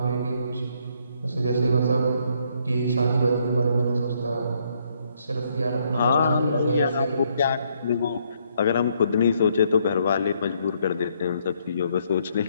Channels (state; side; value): inverted; both; correlation -0.71